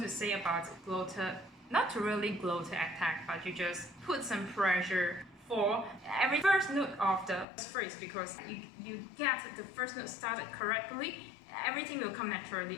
to say about 𝗙𝗀𝗘𝗘, not really 𝗙𝗀𝗘𝗃 attack, but you just put some pressure for every first note of the phrase, because you get the first note started correctly, everything will come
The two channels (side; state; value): right; drops out; at 7.5 s